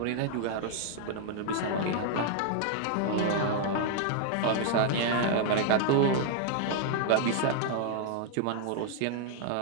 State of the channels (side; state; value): both; different; correlation -0.01